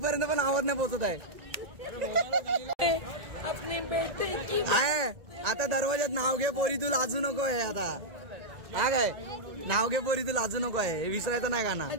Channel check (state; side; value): late; left; 1.8 ms